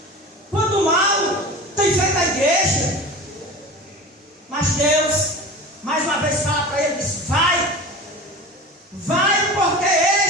quando mal tem feito a igreja. Mas Deus, mais uma vez, fala para ele, diz, vai, porque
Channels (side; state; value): both; normal; correlation 0.34